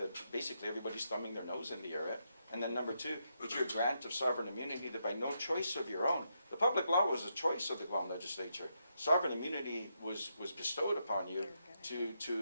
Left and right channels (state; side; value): inverted; both; correlation -0.82